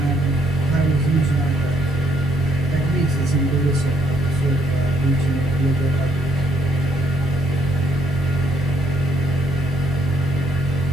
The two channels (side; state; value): both; normal; correlation 0.71